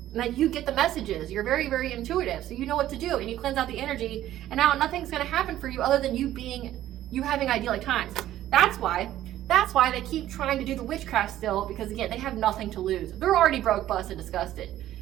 And that you get the messages. You're very, very intuitive. So you know what to do. And you cleanse out the energy. And now nothing's going to happen for you other than you having idyllic times. That's why they keep trying to do the witchcraft still. Because again, they have nothing to lose. They're already broke, busted, disgusted.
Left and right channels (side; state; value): left; quieter; 13.2 dB